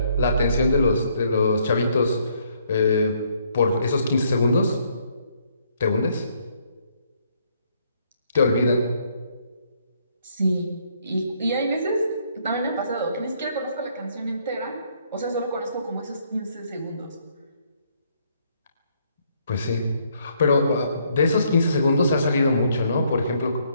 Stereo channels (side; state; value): both; inverted; correlation -0.69